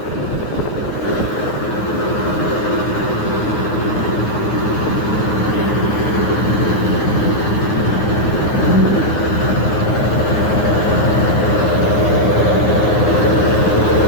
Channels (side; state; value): right; late; 9.7 ms